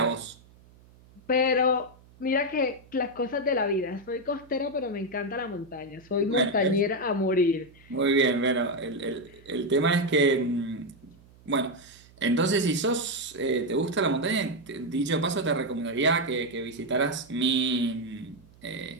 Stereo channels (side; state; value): right; noise; hum, 26 dB below the sound